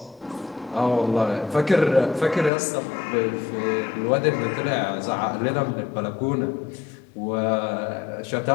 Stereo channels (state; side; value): drops out; right; at 2.5 s